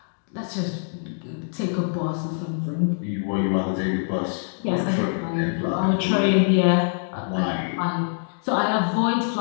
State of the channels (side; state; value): right; silent; digital silence